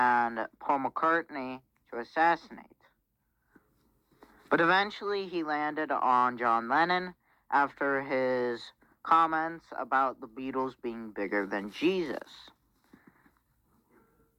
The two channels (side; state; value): both; identical; correlation 1.00